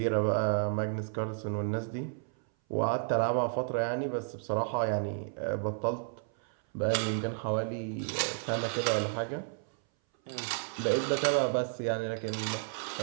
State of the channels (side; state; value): left; silent; 56 dB below the other